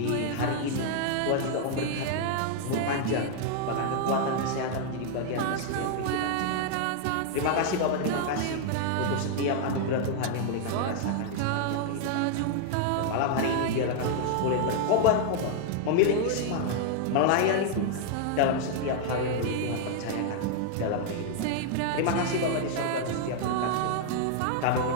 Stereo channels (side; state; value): both; different; correlation 0.00